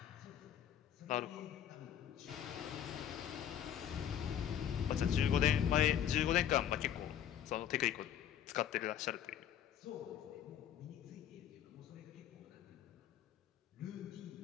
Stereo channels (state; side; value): quieter; right; 10.0 dB